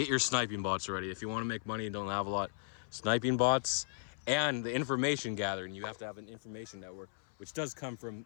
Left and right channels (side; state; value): right; silent; 54 dB below the other